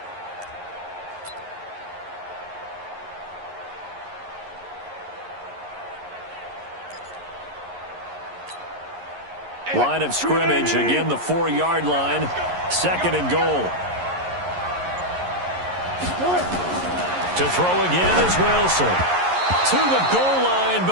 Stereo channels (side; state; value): left; late; 11 ms